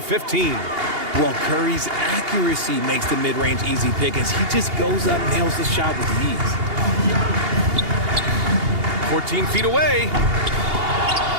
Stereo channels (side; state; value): left; late; 2.8 ms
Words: Well, Curry's accuracy makes the mid-range easy pick as he just goes up and nails the shot with ease. 14 feet away.